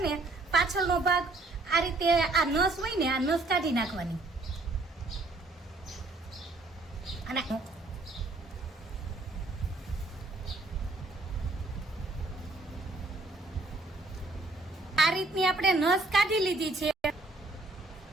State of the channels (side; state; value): left; quieter; 3.1 dB